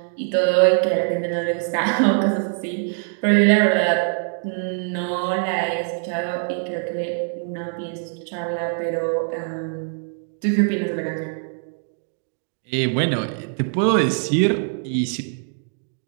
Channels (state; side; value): silent; left; 62 dB below the other